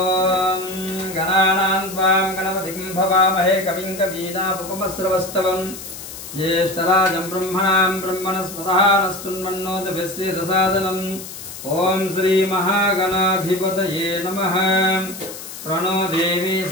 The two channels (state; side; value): noise; left; hiss, 12 dB below the sound